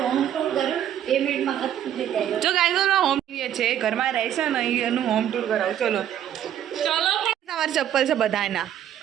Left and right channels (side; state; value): left; quieter; 10.7 dB